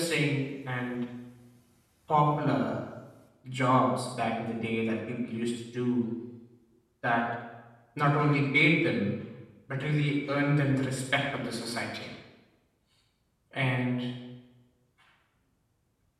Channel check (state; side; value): identical; both; correlation 1.00